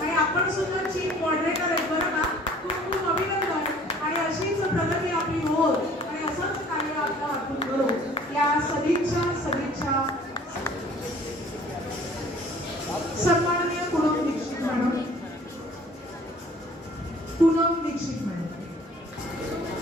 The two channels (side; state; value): both; normal; correlation 0.52